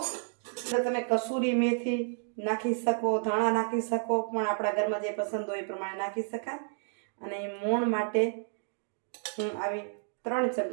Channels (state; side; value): silent; left; 57 dB below the other